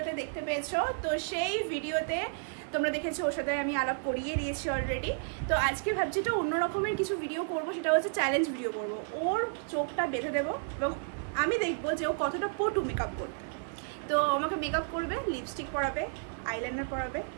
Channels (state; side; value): silent; left; digital silence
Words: দেখতে পেয়েছো। তো সেই ভিডিওতে তোমরা দেখেছো ওর সাথে আমি আলাপ করিয়ে দিয়েছি অলরেডি। তো আজকে ভাবছি তো অন্য রকমের কিছু ভিডিও করব, সেটা হচ্ছে চ্যালেঞ্জ ভিডিও করব। ওর চোখটা বেঁধে দেবো এবং আমি দেখবো যে ও কতটা পটু মেকআপ করতে। তো আমাকে মেকআপ করবে, লিপস্টিক পরাবে, আইলাইনার পরাবে,